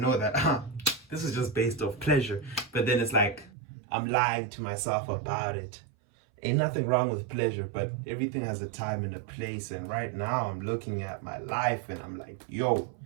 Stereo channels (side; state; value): left; drops out; at 3.5 s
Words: that this is just based off pleasure. But then it's like I'm lying to myself about it. Ain't nothing wrong with pleasure, but everything has a time and a place. And right now I'm looking at my life and I'm like, yo,